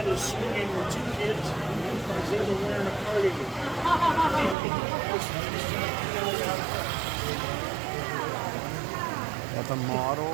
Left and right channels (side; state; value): left; drops out; at 4.5 s